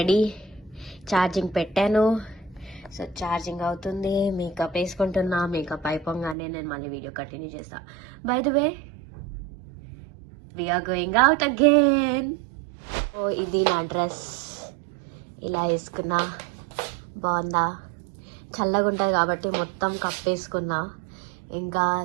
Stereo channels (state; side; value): drops out; left; at 6.4 s